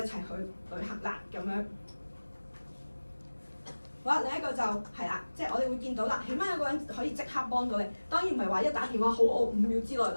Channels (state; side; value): inverted; both; correlation -1.00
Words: 去旅行啦，咁樣。好啦，另一個就係啦，即係我哋會見到啦，起碼有個人可以即刻幫到你。當然唔係話一打電話好，我5秒之內